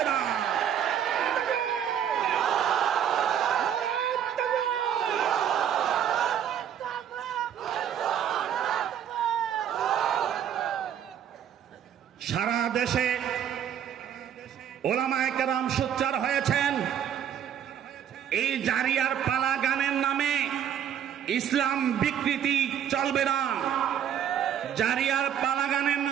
না। সারা দেশে ওলামায়ে কেরাম সোচ্চার হয়েছেন, এই জারিয়ার পালা গানের নামে ইসলাম বিকৃতি চলবে না। জারিয়ার পালা গানের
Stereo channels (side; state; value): left; quieter; 9.3 dB